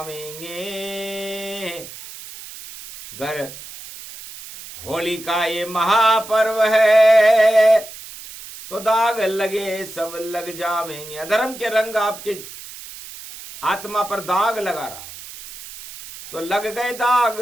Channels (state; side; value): noise; right; hiss, 14 dB below the sound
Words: गर होली का ये महापर्व है, तो दाग लगे सब लग जावेंगे। अधर्म के रंग आपके आत्मा पर दाग लगा रहा है, तो लग गए दाग